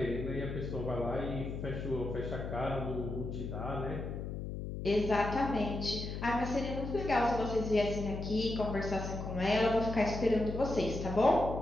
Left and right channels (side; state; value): left; noise; hum, 6 dB below the sound